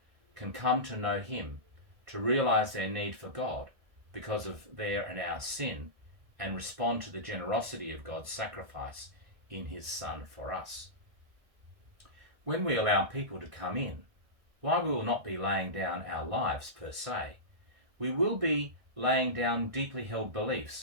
can come to know Him, to realise their need for God because of their and our sin, and respond to the generosity of God's sacrifice in His Son for us. When we allow people to come in, while we will not be laying down our lives per se, we will be laying down deeply held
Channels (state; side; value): late; left; 1.6 ms